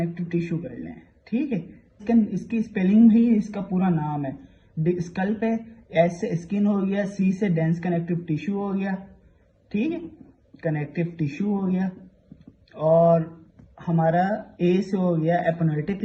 टिश्यू कर लें। ठीक है। इसकी स्पेलिंग भी इसका पूरा नाम है। स्कल पे एस से स्किन हो गया, सी से डेंस कनेक्टिव टिश्यू हो गया। ठीक है, कनेक्टिव टिश्यू हो गया, और हमारा ए से हो गया एपोनेटिक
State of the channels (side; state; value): both; identical; correlation 1.00